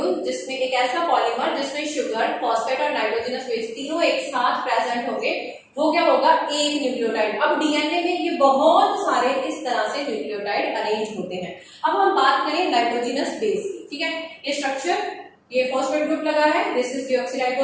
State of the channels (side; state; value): both; identical; correlation 1.00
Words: जिसमें एक ऐसा पॉलीमर जिसमें शुगर, फॉस्फेट और नाइट्रोजनस बेस तीनों एक साथ प्रेजेंट होंगे, वो क्या होगा? एक न्यूक्लियोटाइड। अब डीएनए में ये बहुत सारे इस तरह से न्यूक्लियोटाइड अरेंज होते हैं। अब हम बात करें नाइट्रोजनस बेस की। ठीक है, ये स्ट्रक्चर, ये फॉस्फेट ग्रुप लगा है, this is